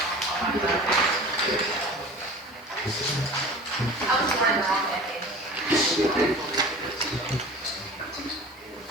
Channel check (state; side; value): normal; both; correlation 0.40